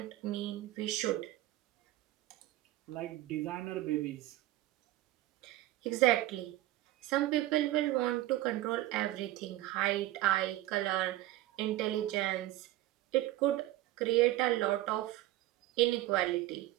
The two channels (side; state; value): left; quieter; 16.0 dB